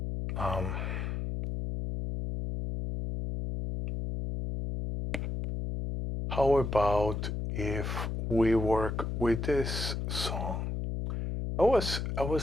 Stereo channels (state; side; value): noise; left; hum, 3 dB below the sound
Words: how about if we work with this song? I was